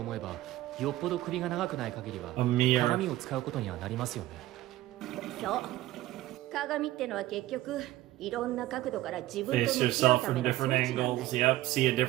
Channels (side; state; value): left; quieter; 16.0 dB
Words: えば、よっぽど首が長くない限りは A mirror. 鏡を使うことにはなりますよね。そう。鏡ってのは結局いろんな角度から自分と Face 向き合う yourself ため from の装 different 置なんだ angles. よ。 Yep, see a